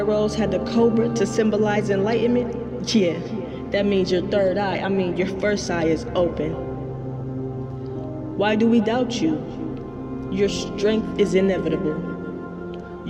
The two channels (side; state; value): both; identical; correlation 1.00